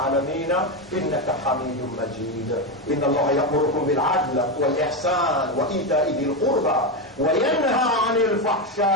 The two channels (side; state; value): both; normal; correlation 0.11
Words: إنك حميد مجيد إن الله يأمركم بالعدل والإحسان وإيتاء ذي القربى وينهى عن